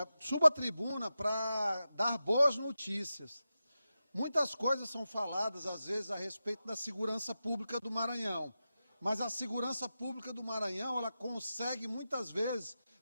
Subo à tribuna para dar boas notícias. Muitas coisas são faladas, às vezes, a respeito da segurança pública do Maranhão. Mas a segurança pública do Maranhão, ela consegue, muitas vezes,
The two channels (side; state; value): both; inverted; correlation -0.92